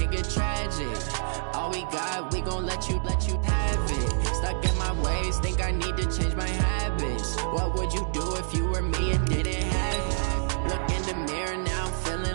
get tragic. All we got, we gon' let you have it. Stuck in my ways, think I need to change my habits. What would you do if you were me and didn't have it? Look in the mirror, now I'm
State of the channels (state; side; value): silent; left; digital silence